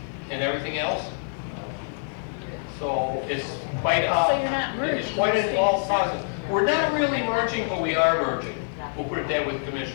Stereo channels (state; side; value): silent; right; digital silence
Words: and everything else. So it's quite So you're not merging. It's quite an involved process. We're not really merging, but we are merging. We'll put it that with